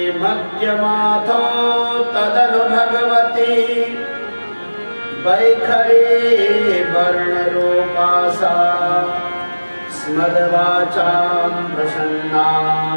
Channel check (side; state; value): both; inverted; correlation -1.00